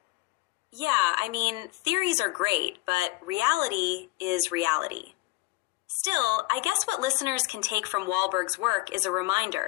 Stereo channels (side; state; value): right; quieter; 20.4 dB